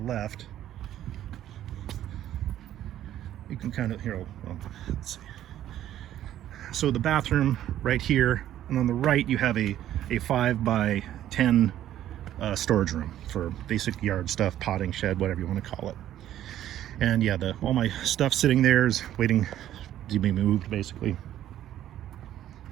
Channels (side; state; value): left; quieter; 12.1 dB